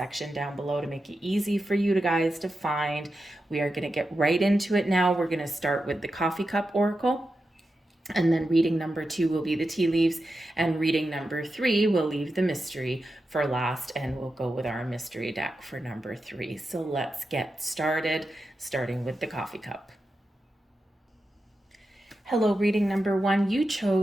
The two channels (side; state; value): both; normal; correlation 0.90